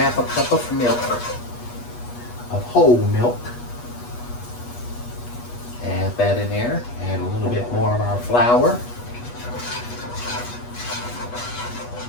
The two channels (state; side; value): late; right; 8.3 ms